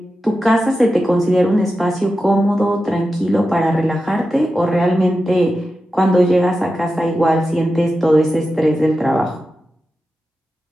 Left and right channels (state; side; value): normal; both; correlation 0.91